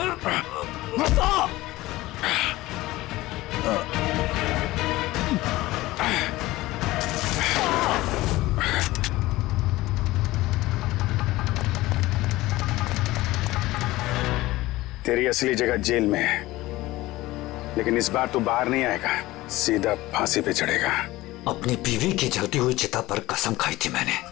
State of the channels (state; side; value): quieter; right; 18.3 dB